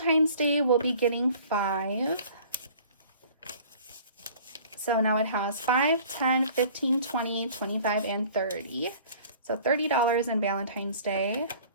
Day will be getting 5. So now it has 5, 10, 15, 20, 25, and 30. So $30 in Valentine's Day.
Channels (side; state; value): both; inverted; correlation -0.49